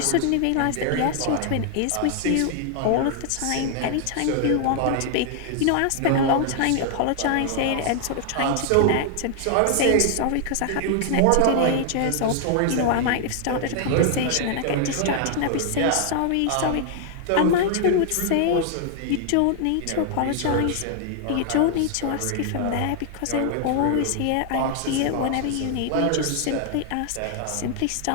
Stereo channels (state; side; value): different; both; correlation 0.00